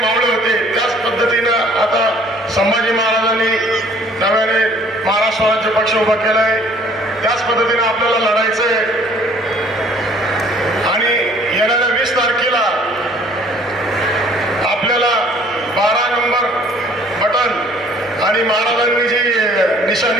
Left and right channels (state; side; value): normal; both; correlation 0.56